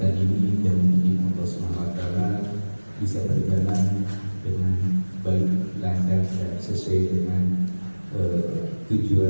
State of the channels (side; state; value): both; inverted; correlation -1.00